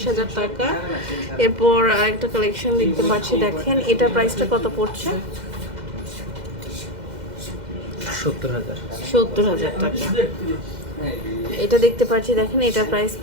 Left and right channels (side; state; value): left; late; 2.0 ms